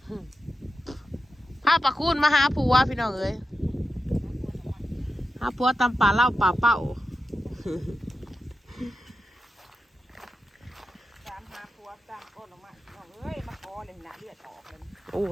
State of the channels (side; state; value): both; normal; correlation 0.91